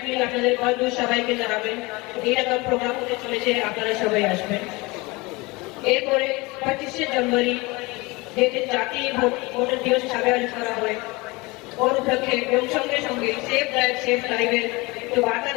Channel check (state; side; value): quieter; right; 24.1 dB